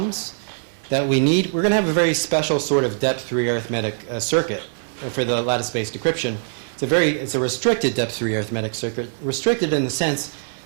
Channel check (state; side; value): silent; left; 64 dB below the other